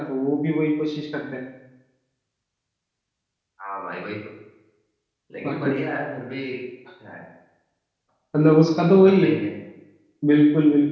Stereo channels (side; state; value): both; identical; correlation 1.00